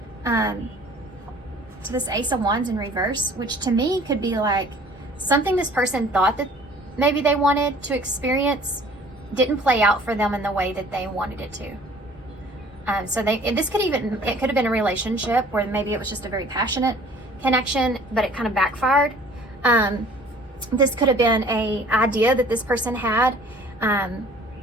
to this Ace of Wands in reverse, which to me could be like something this person thought that maybe they wanted to experience didn't play out for them in the way that they wanted it to. So it could have been a relationship where maybe it was just a very passionate connection, but it kind of backfired. This could have been a idea that this person had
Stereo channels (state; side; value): normal; both; correlation 0.52